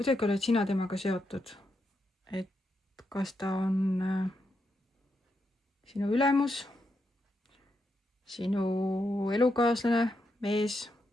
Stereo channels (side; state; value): both; normal; correlation 0.83